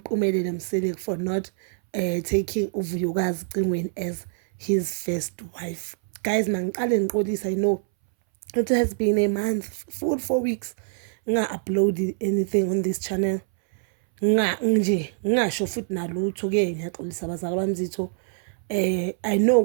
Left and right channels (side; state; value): left; silent; 62 dB below the other